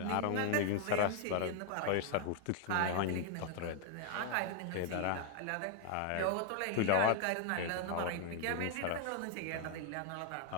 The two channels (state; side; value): different; both; correlation 0.00